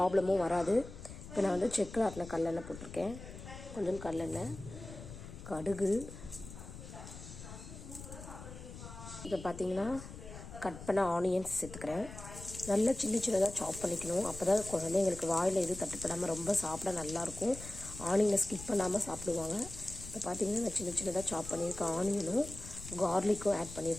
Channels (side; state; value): left; noise; rumble, 13 dB below the sound